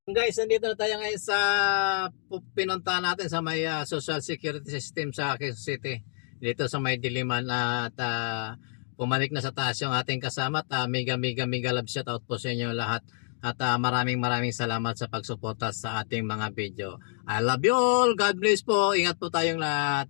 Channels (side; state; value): right; silent; 59 dB below the other